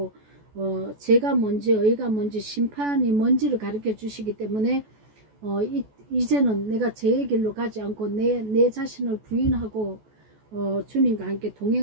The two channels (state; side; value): late; left; 14 ms